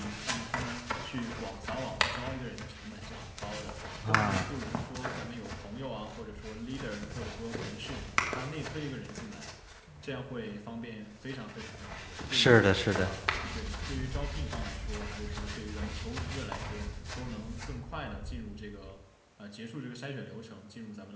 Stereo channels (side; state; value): both; identical; correlation 1.00